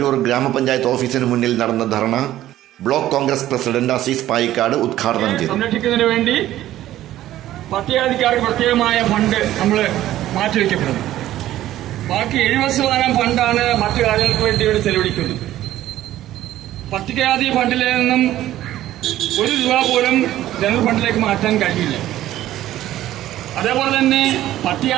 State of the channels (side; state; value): left; quieter; 13.7 dB